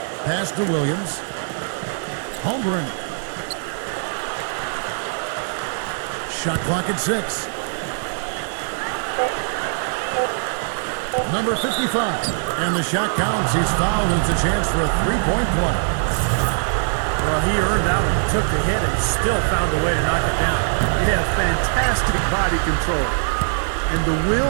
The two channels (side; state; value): left; silent; digital silence